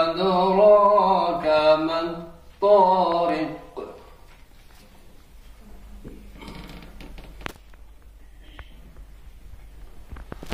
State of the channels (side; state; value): both; identical; correlation 1.00